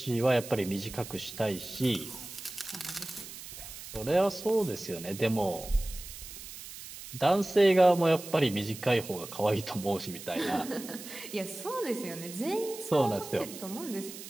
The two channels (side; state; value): right; noise; hiss, 13 dB below the sound